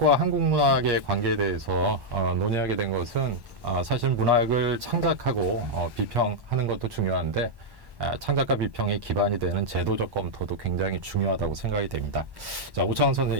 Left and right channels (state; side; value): late; left; 1.1 ms